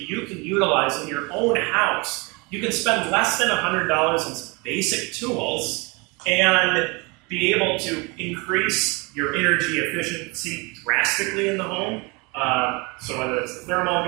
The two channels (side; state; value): left; quieter; 27.8 dB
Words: you can utilize in your own house. You can spend less than $100 on some basic tools and be able to increase your energy efficiency drastically in the home. So whether it's the thermal